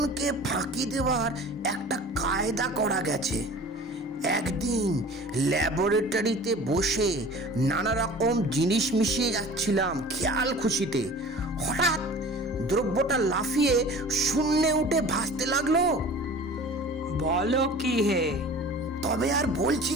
ফাঁকি দেওয়ার একটা কায়দা করা গেছে। একদিন ল্যাবরেটরিতে বসে নানা রকম জিনিস মিশিয়ে যাচ্ছিলাম খেয়াল খুশিতে। হঠাৎ দ্রব্যটা লাফিয়ে শূন্যে উঠে ভাসতে লাগলো। বলো কি হে? তবে আর বলছি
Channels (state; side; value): normal; both; correlation 0.42